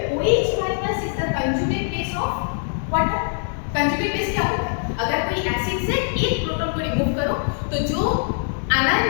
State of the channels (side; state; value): right; silent; 60 dB below the other